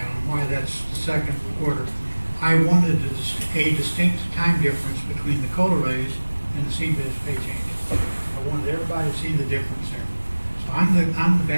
on why that's the 2nd quarter. I wanted a distinct time difference between the COLA raise and the CBIZ pay change. I wanted everybody to see the difference there. So I'm the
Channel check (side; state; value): both; inverted; correlation -1.00